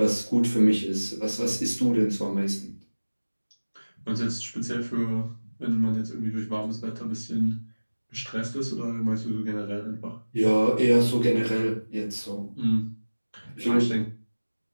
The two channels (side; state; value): both; inverted; correlation -1.00